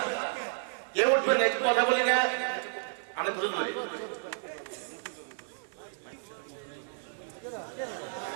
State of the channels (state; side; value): silent; left; digital silence